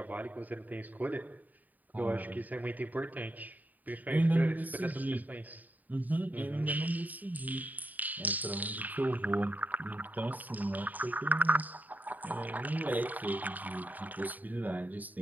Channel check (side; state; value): left; late; 0.081 ms